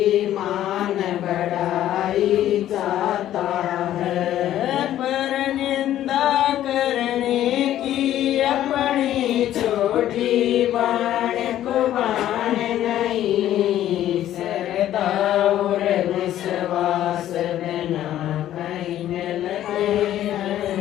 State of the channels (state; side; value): quieter; right; 12.4 dB